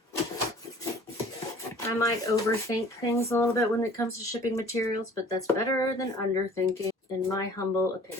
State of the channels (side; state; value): both; normal; correlation 0.50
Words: I might overthink things a little bit when it comes to shipping materials, but that's better than underthinking, in my humble